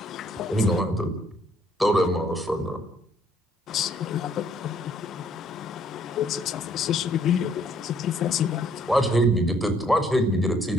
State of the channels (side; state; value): both; normal; correlation 0.65